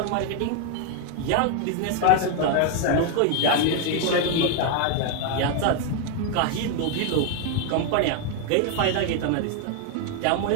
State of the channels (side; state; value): both; different; correlation 0.01